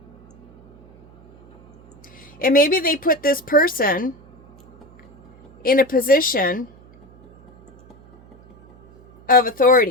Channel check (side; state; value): right; noise; hum, 26 dB below the sound